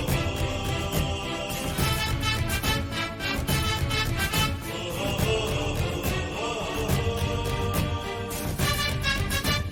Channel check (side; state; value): both; identical; correlation 1.00